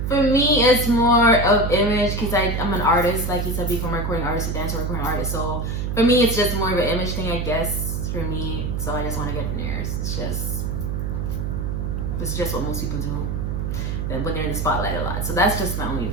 For me, it's more of image because I'm an artist, like you said before, I'm a recording artist, a dancer, recording artist. So for me, it's just more of an image thing, I guess, for me. So I just want to get veneers. It's just what most people do when they're in the spotlight a lot. So that's just my only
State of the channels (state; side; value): noise; right; hum, 2 dB below the sound